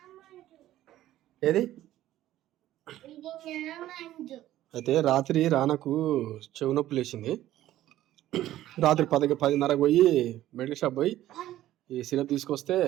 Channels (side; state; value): left; quieter; 13.8 dB